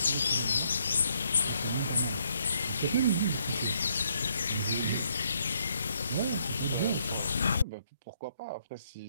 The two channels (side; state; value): both; inverted; correlation -0.72